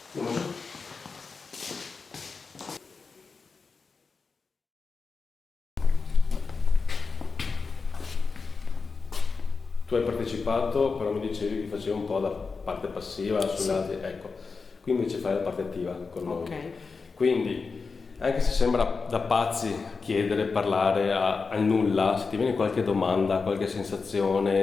Andiamo giù. Tu hai partecipato, però mi dicevi che facevi un po' da parte passiva sugli altri, ecco. Qui invece fai la parte attiva con noi. Ok. Quindi, anche se sembra da pazzi chiedere, parlare al nulla, se ti viene qualche domanda, qualche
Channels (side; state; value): right; quieter; 4.7 dB